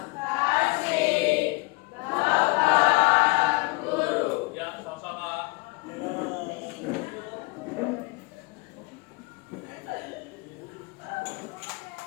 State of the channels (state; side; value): quieter; right; 26.3 dB